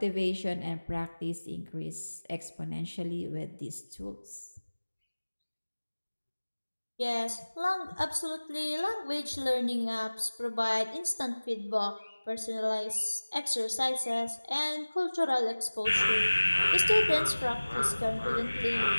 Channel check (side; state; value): both; inverted; correlation -1.00